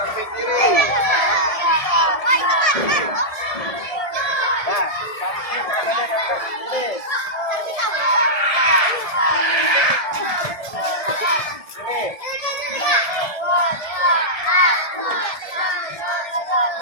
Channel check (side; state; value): right; late; 1.7 ms